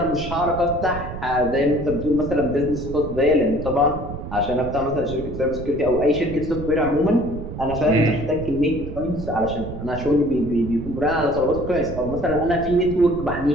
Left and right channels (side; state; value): right; noise; rumble, 9 dB below the sound